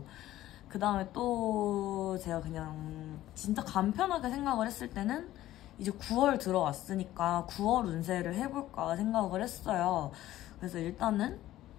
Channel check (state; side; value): quieter; right; 14.4 dB